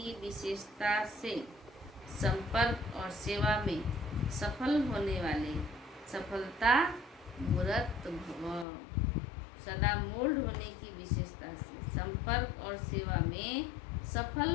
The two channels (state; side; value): drops out; right; at 8.7 s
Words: विशेषता से संपर्क और सेवा में सफल होने वाले सफलता मूर्त भव। सदा मोल्ड होने की विशेषता से संपर्क और सेवा में सफल